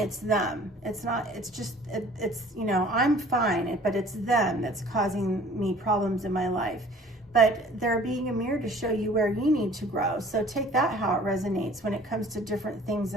them. It's not, it's just, it's, you know, I'm fine, but it's them that's causing me problems in my life. But they're being a mirror to show you where you need to grow. So take that how it resonates when it comes to different things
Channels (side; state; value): both; normal; correlation 0.51